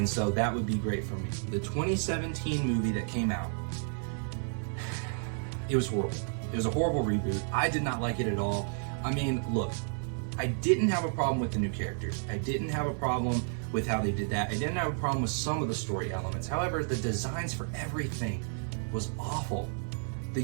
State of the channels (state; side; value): silent; left; 57 dB below the other